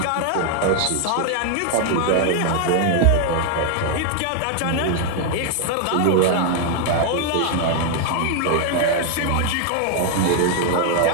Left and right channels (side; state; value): both; different; correlation 0.00